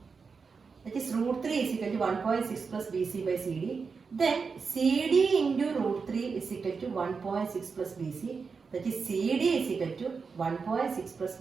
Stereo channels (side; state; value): left; quieter; 5.1 dB